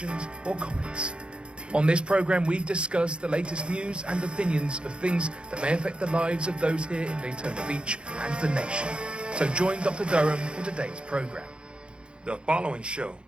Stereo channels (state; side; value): late; left; 0.055 ms